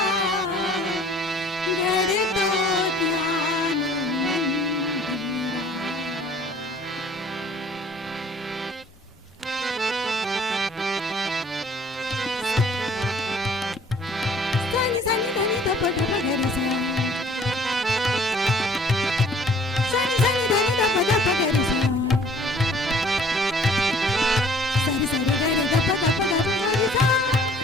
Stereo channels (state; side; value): normal; both; correlation 0.55